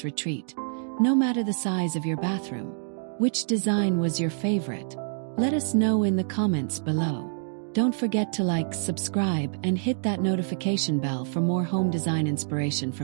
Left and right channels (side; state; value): left; silent; digital silence